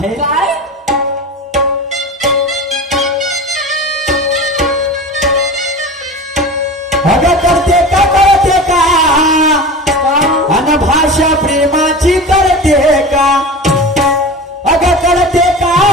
काय अगं करते का कळते का अन भाषा प्रेमाची करते का अगं करते का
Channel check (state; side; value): normal; both; correlation 0.32